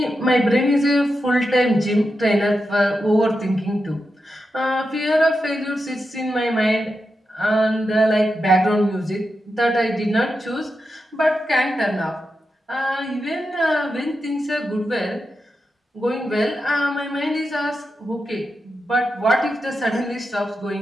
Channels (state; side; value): normal; both; correlation 0.88